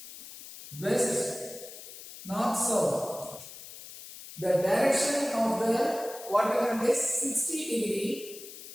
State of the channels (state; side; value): noise; left; hiss, 14 dB below the sound